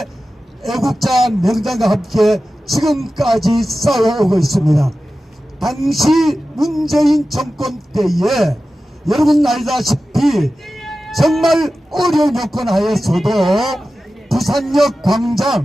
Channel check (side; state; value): both; normal; correlation 0.94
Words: 애국자 명장과 함께 지금까지 쌓아오고 있습니다. 당시 문재인 정권 때에 여러분 알다시피 정말 어려운 여건 하에서도 부산역